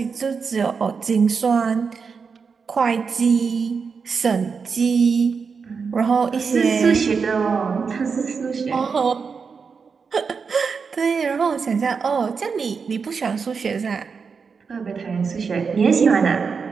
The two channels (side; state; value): left; quieter; 5.5 dB